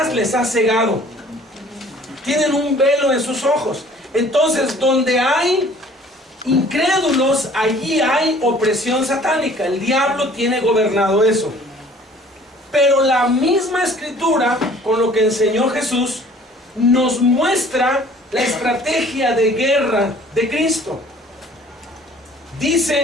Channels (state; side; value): normal; both; correlation 0.52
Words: les ha cegado. Tienen un velo en sus ojos. Entonces, donde hay incrédulos, allí hay opresión satánica. El diablo tiene gobernado eso. Pero la misma escritura, con lo que enseñó Jesús, nos muestra la estrategia de guerra de Cristo.